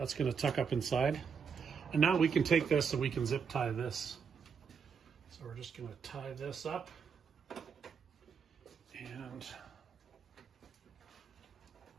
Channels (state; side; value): quieter; left; 6.3 dB